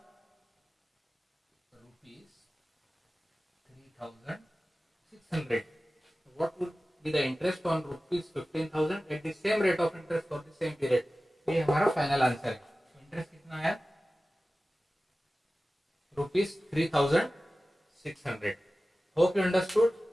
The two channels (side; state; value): both; normal; correlation 0.96